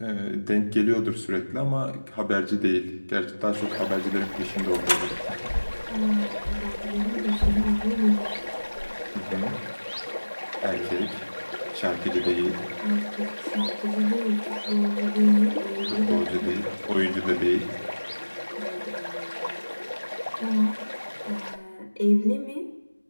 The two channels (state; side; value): inverted; both; correlation -1.00